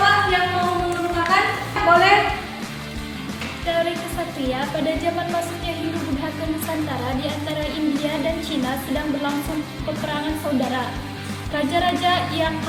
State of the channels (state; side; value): identical; both; correlation 1.00